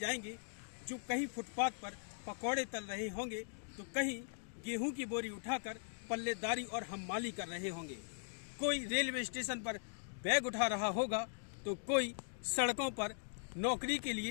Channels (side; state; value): right; silent; digital silence